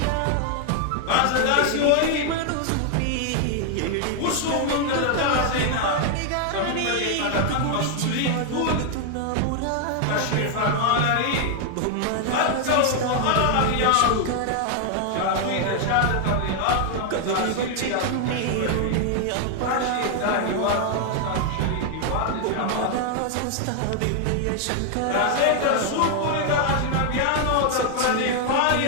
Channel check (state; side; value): different; both; correlation 0.00